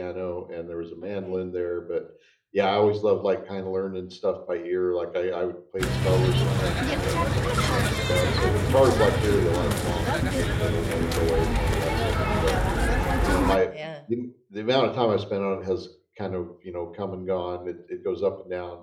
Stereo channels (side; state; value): both; identical; correlation 1.00